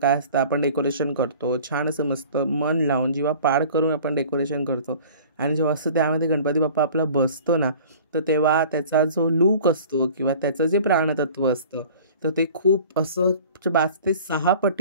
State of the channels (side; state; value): both; inverted; correlation -0.45